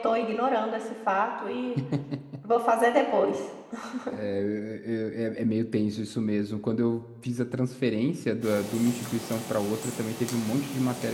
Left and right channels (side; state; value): both; identical; correlation 1.00